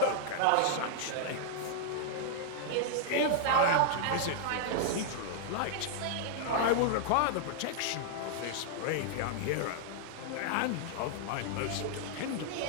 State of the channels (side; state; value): both; different; correlation -0.01